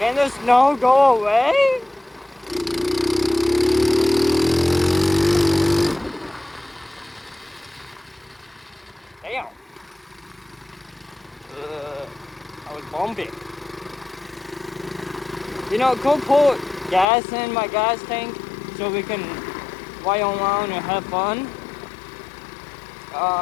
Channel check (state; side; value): drops out; right; at 17.1 s